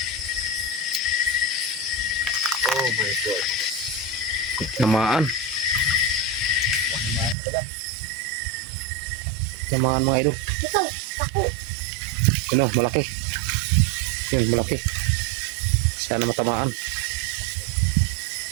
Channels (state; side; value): drops out; left; at 7.4 s